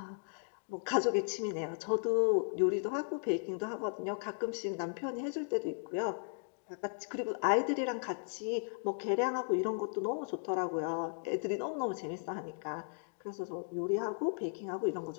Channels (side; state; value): right; silent; digital silence